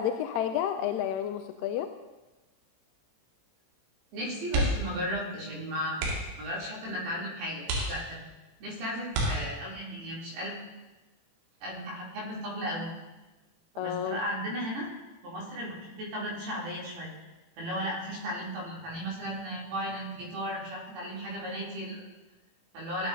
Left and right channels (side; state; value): left; late; 18 ms